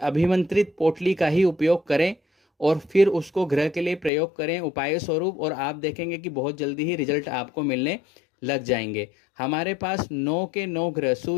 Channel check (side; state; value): right; drops out; at 4.1 s